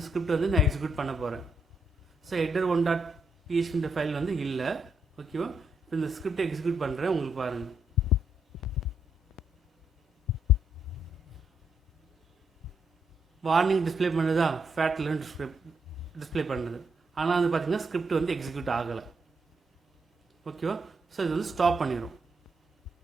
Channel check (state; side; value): normal; both; correlation 0.77